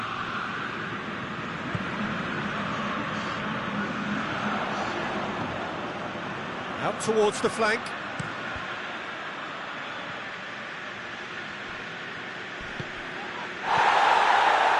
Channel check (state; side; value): identical; both; correlation 1.00